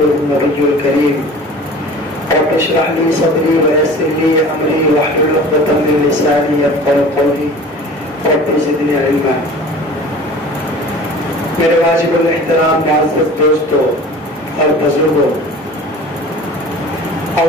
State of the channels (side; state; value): both; normal; correlation 0.41